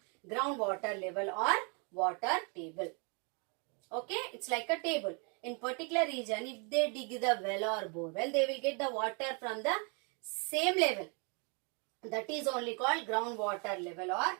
groundwater level or water table. Okay, it's like a table. In particular region, if they dig the well or bore well, they will get the water from the same level. That is only called groundwater level or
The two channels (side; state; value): left; quieter; 35.3 dB